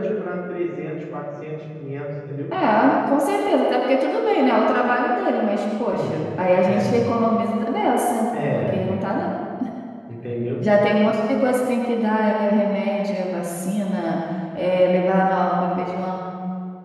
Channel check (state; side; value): identical; both; correlation 1.00